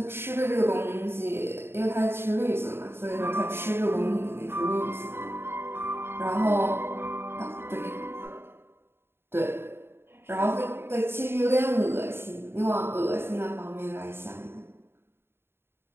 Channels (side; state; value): left; late; 0.11 ms